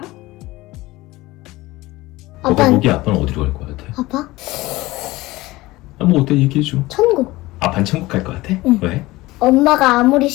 너가 보기 아빠는 어디로 갈 것 같아? 아빠? 뭐 어때 얘기해줘. 천국. 아빠는 천국 갈 것 같아? 응. 왜? 엄마가 아무리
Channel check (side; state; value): right; quieter; 19.3 dB